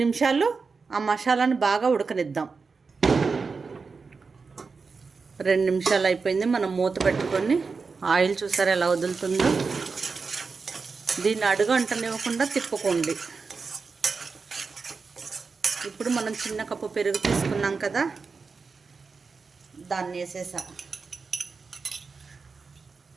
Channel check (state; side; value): quieter; left; 4.7 dB